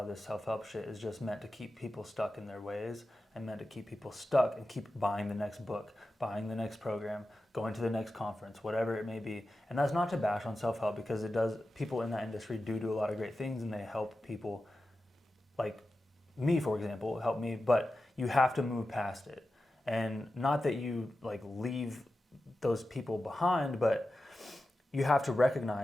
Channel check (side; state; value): both; normal; correlation 0.92